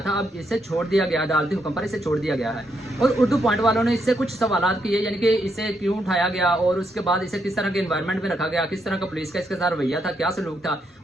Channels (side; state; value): both; normal; correlation 0.78